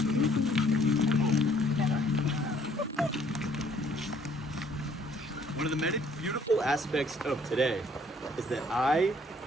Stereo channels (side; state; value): both; normal; correlation 0.61